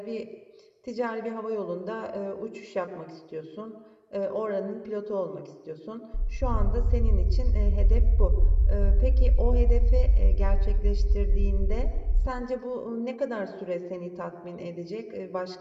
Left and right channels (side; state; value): both; identical; correlation 1.00